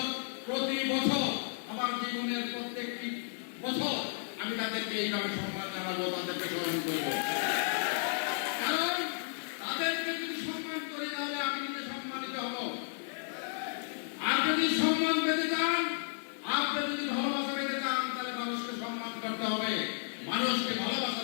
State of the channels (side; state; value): right; silent; digital silence